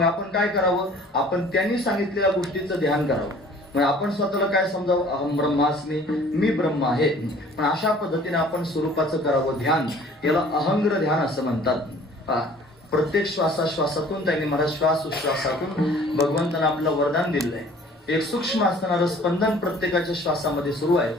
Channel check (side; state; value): both; normal; correlation 0.51